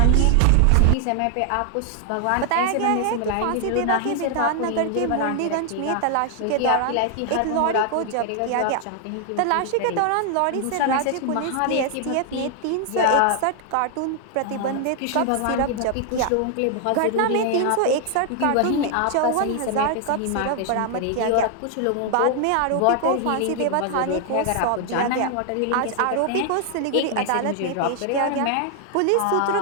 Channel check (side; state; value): both; different; correlation 0.00